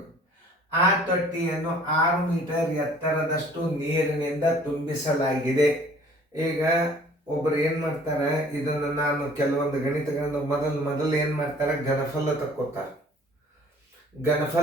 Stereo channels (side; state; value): both; normal; correlation 0.53